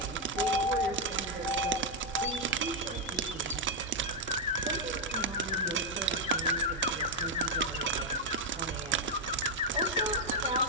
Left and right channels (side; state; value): both; normal; correlation 0.00